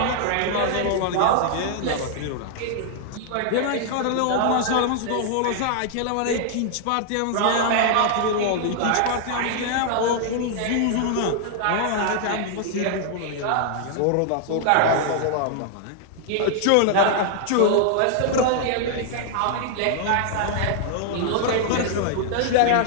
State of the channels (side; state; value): both; different; correlation 0.00